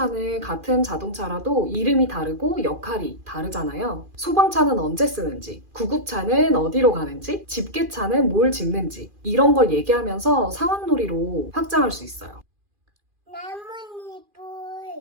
같은 자동차라도 이름이 다르고 역할이 다르잖아요. 소방차는 언제 쓰는지, 구급차는 어디로 가는지, 집게차는 뭘 짚는지 이런 걸 얘기하면서 상황놀이로 확장할 수 있어요.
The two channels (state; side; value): late; left; 2.4 ms